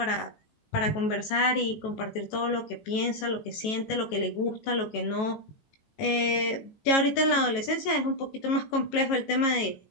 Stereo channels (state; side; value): late; right; 18 ms